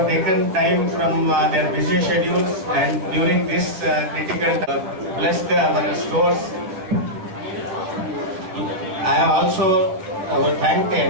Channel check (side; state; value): left; late; 11 ms